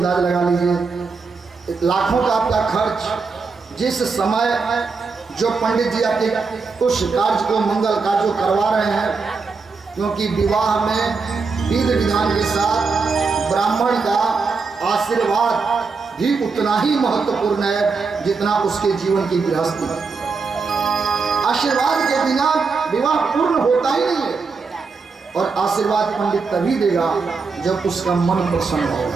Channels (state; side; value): quieter; left; 4.7 dB